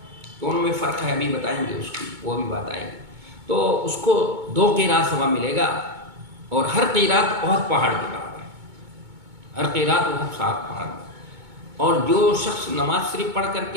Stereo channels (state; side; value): late; left; 2.2 ms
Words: دونوں میں فرق ہے، ابھی بتائیں گے اس کی، وہ بھی بات آئے گی۔ تو اس کو 2 قیرات ثواب ملے گا، اور ہر قیرات احد پہاڑ کے برابر ہے، ہر قیرات احد پہاڑ۔ اور جو شخص نماز شریف پڑھ کر